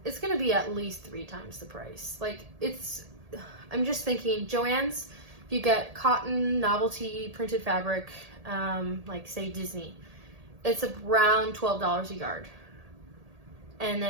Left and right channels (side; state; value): left; late; 1.8 ms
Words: it's gonna be at least 3 times the price. Like, it's, I'm just thinking, Joann's, if you get cotton novelty printed fabric, like say Disney, it's around $12 a yard. And